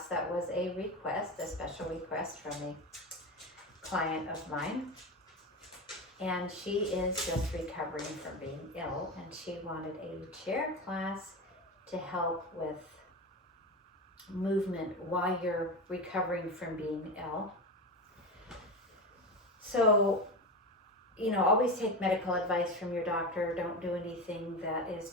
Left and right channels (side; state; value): both; normal; correlation 0.21